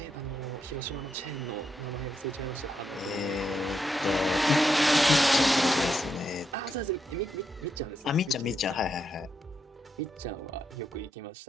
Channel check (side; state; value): both; normal; correlation 0.81